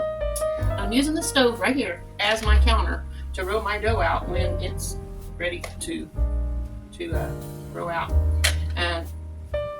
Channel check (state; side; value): identical; both; correlation 1.00